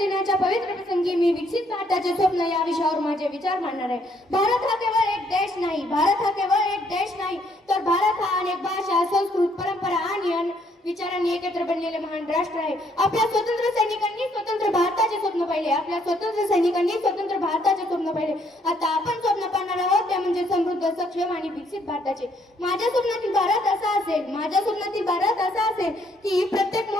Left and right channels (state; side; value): normal; both; correlation 0.68